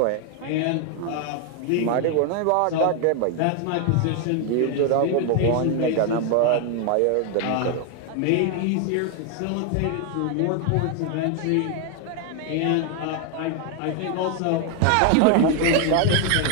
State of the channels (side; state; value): both; different; correlation 0.00